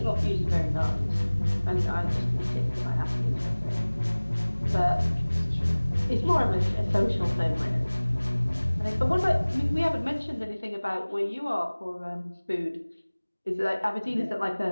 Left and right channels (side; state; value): both; inverted; correlation -1.00